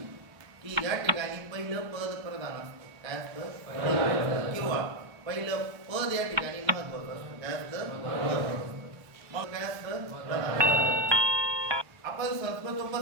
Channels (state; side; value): late; left; 1.3 ms